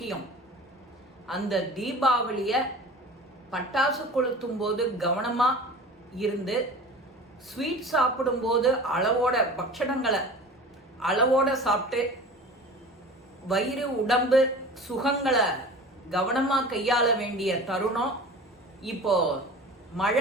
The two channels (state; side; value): normal; both; correlation 0.38